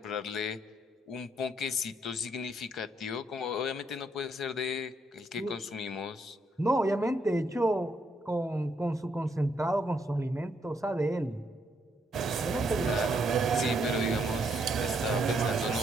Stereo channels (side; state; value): both; normal; correlation 0.74